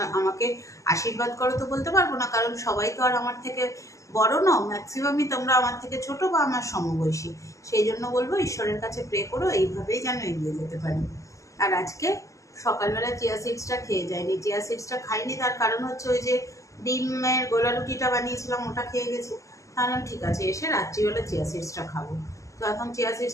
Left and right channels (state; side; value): late; right; 0.16 ms